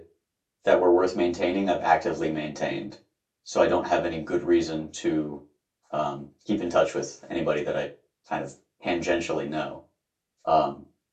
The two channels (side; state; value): both; identical; correlation 1.00